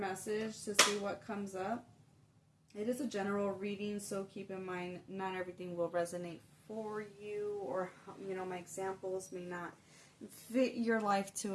to see what comes up, it is a general reading, so keep in mind not everything will resonate for you, or, my examples may not fit your life to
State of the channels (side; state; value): both; identical; correlation 1.00